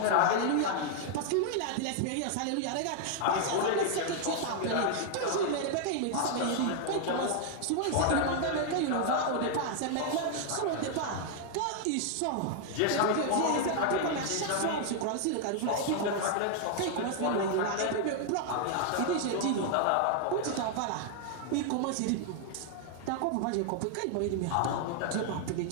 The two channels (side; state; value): both; different; correlation 0.00